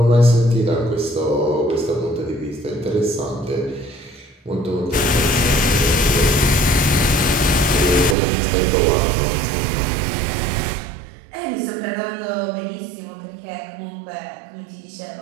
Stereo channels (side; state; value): left; drops out; at 8.2 s